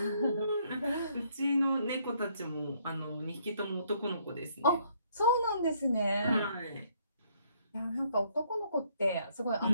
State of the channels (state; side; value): inverted; both; correlation -0.67